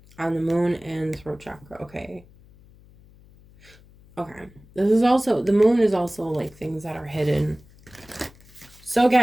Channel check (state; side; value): noise; left; hum, 25 dB below the sound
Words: on the moon and throat chakra. Okay. Okay. This is also, the moon is also like things that are hidden. So